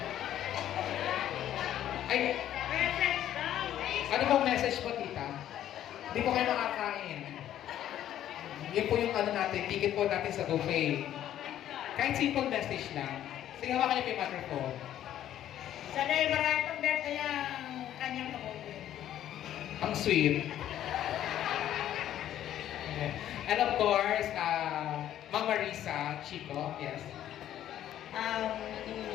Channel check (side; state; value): right; quieter; 11.7 dB